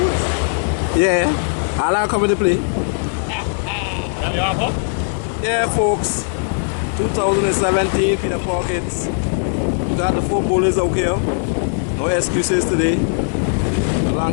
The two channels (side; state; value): right; silent; 67 dB below the other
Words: Yeah. I'll come into play. Yeah, folks. 2017 Peter Perkins. We got the 4 bowlers out here. No excuses today.